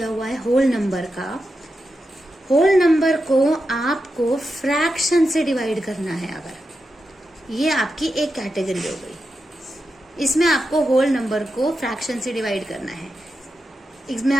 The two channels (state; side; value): normal; both; correlation 0.89